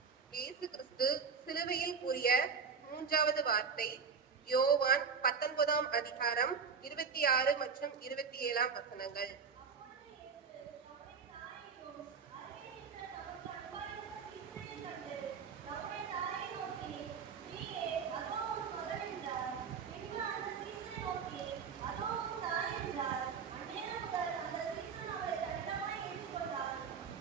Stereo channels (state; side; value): quieter; left; 6.0 dB